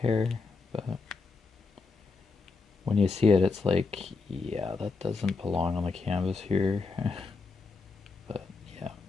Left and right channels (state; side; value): quieter; right; 4.2 dB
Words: but when you see it, it's like, yeah, that doesn't belong on the canvas here. But yeah,